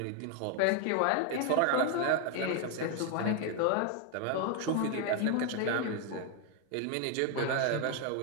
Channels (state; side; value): different; both; correlation 0.01